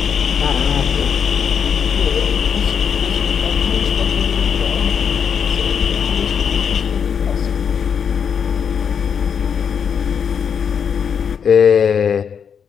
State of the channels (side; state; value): right; quieter; 7.2 dB